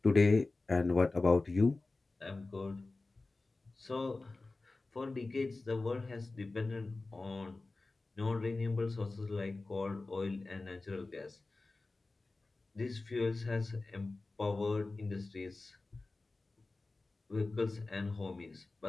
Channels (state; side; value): quieter; right; 3.4 dB